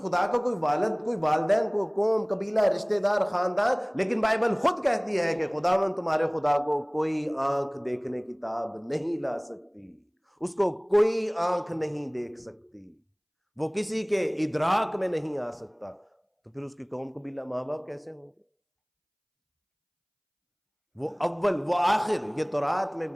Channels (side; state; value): both; identical; correlation 1.00